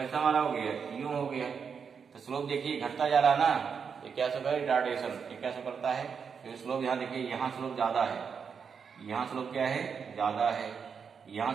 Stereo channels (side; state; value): left; quieter; 6.4 dB